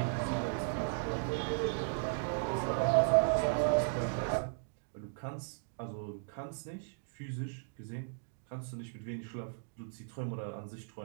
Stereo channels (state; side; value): silent; left; digital silence